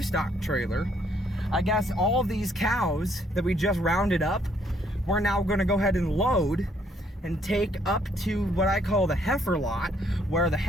trailer. I guess all of these cows that we just rounded up, we're now going to go ahead and load and take up to what I call the heifer lot, where the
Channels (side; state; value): both; normal; correlation 0.67